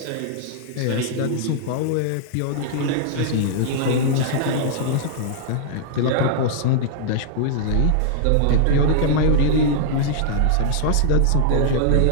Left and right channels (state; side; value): different; both; correlation -0.01